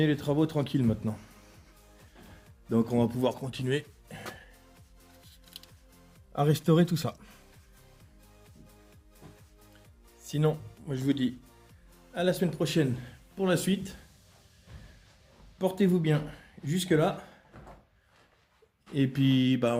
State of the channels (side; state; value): both; identical; correlation 1.00